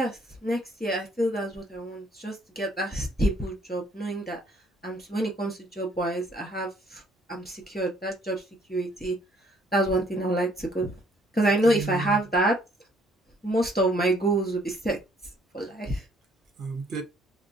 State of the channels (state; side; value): normal; both; correlation 0.64